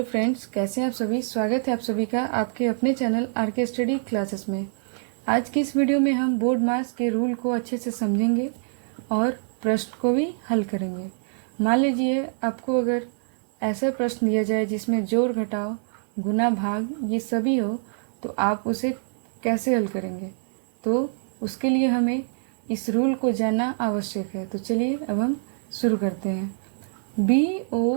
friends, कैसे हैं आप सभी। स्वागत है आप सभी का आपके अपने चैनल आरके स्टडी क्लासेस में। आज की इस वीडियो में हम बोर्ड मास के रूल को अच्छे से समझेंगे और प्रश्न को भी हल करेंगे। मान लीजिए आपको अगर ऐसा प्रश्न दिया जाए जिसमें जोड़ घटाव गुना भाग ये सभी हो, तो आप उसे कैसे हल करेंगे। तो उसके लिए हमें इस रूल को जानना आवश्यक है। तो चलिए अब हम शुरू करते हैं।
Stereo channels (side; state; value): left; silent; digital silence